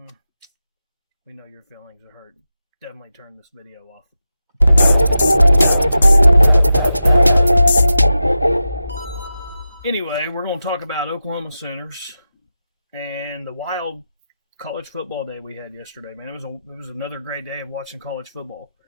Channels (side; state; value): both; inverted; correlation -0.92